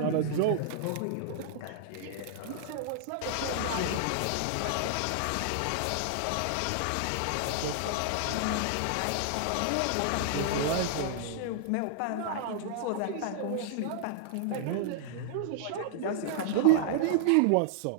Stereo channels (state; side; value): different; both; correlation -0.01